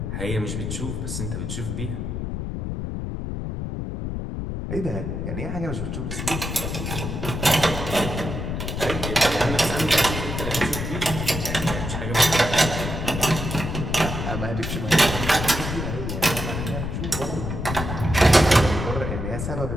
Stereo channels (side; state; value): left; noise; rumble, 4 dB below the sound